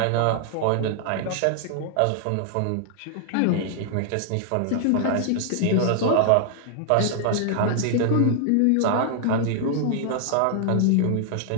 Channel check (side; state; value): both; different; correlation 0.00